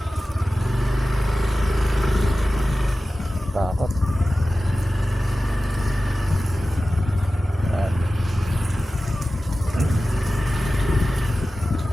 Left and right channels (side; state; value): both; normal; correlation 0.95